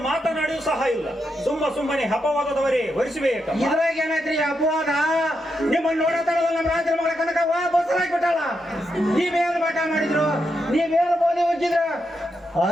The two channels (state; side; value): normal; both; correlation 0.84